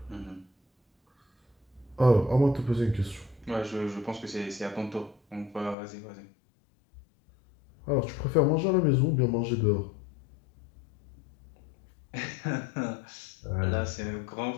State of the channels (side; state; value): right; drops out; at 5.8 s